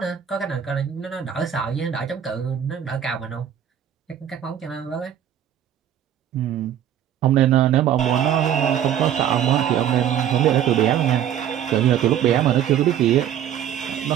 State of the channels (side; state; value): left; quieter; 10.0 dB